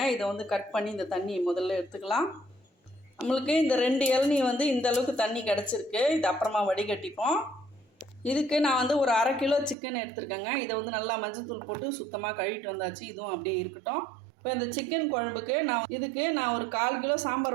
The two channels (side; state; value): left; drops out; at 9.8 s